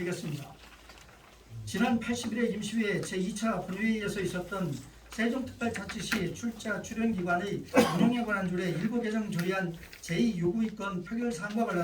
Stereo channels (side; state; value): both; identical; correlation 1.00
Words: 지난 80일의 임시회 제2차 본회의에서 있었던 세종특별자치시 출자 출연기관의 운영에 관한 조례 일부 개정 조례안 제2요구의건 표결 사항과